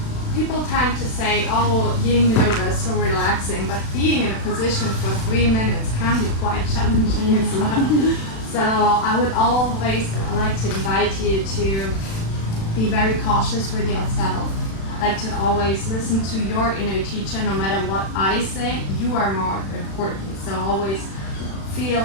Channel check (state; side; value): late; right; 36 ms